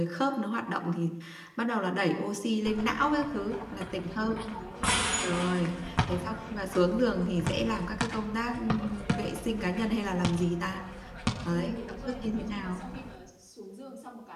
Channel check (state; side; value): identical; both; correlation 1.00